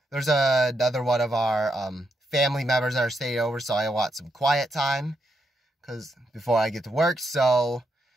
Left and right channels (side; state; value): both; normal; correlation 0.80